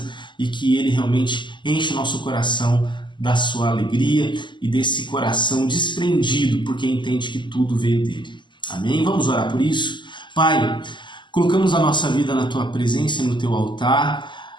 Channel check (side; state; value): right; late; 0.22 ms